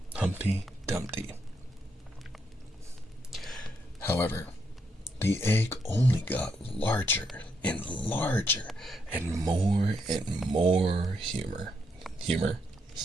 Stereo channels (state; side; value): normal; both; correlation 0.78